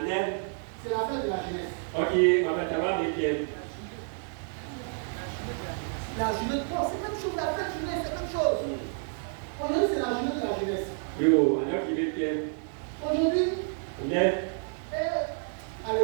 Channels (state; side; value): silent; left; 57 dB below the other